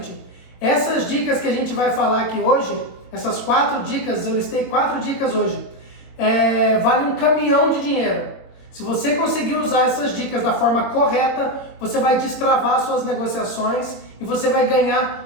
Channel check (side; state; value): right; late; 22 ms